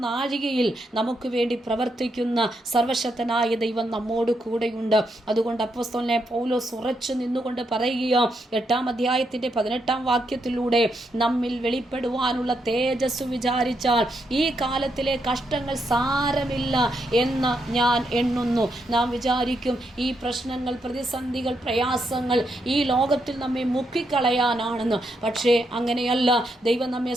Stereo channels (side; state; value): both; normal; correlation 0.80